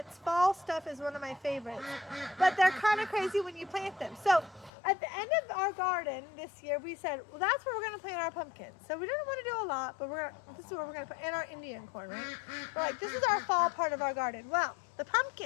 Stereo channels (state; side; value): drops out; right; at 4.7 s